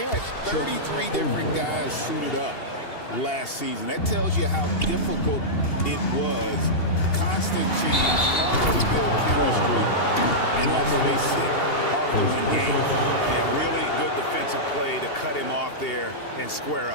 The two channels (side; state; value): right; late; 2.8 ms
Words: had 33 different guys suited up last season. That tells you how difficult it was. Constant change, hard to build chemistry, and let's face it, hard to win games. Yeah, really good defensive play to cut him off there and square